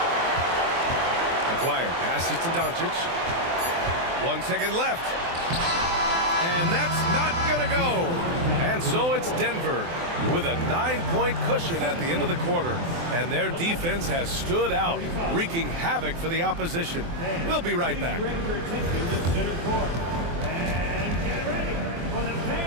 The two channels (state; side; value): late; left; 24 ms